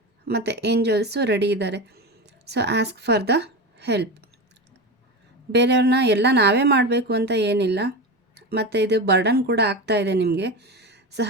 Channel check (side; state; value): both; normal; correlation 0.22